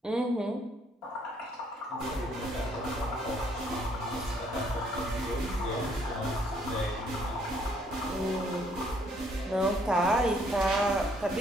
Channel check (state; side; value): normal; both; correlation 0.66